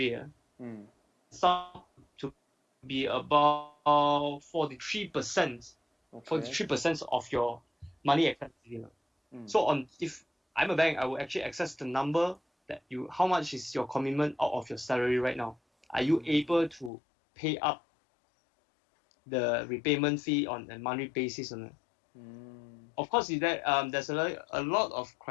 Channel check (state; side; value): drops out; right; at 16.9 s